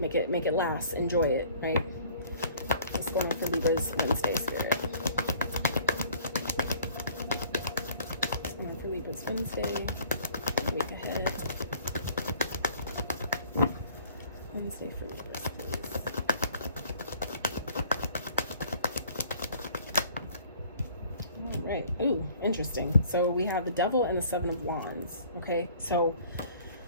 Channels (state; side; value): inverted; both; correlation -0.54